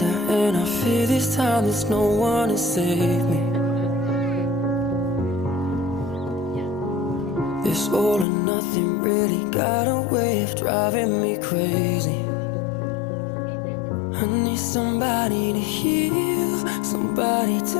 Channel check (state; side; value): drops out; right; at 8.2 s